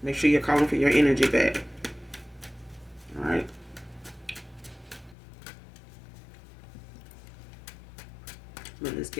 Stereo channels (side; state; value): right; drops out; at 5.2 s